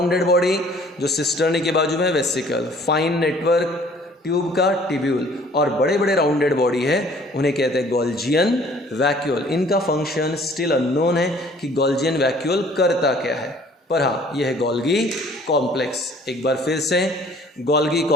बॉडी जो सिस्टर्नी के बाजू में वेसिकल, फाइन नेटवर्क ट्यूब का टिब्यूल, और बड़े बड़े राउंडेड बॉडी है उन्हें कहते हैं गोल्जियन वैक्यूल। इनका फंक्शन स्टिल अननोन है कि गोल्जियन वैक्यूल करता क्या है, पर हाँ यह है गोल्गी कॉम्प्लेक्स। एक बार फिर से, गोल्गी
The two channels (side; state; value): both; normal; correlation 0.55